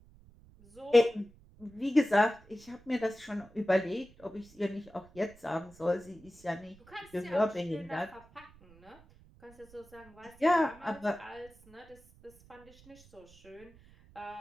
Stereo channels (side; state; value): right; noise; rumble, 25 dB below the sound